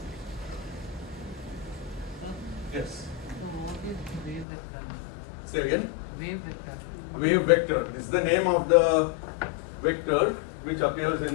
Yes. So what is wave vector? Say again. Wave vector. Wave vector. This is the name of the vector which appears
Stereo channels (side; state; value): right; drops out; at 4.5 s